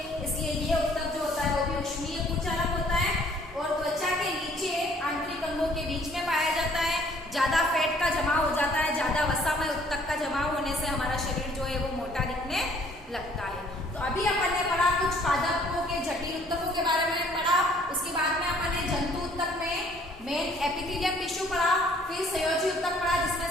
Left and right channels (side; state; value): both; normal; correlation 0.59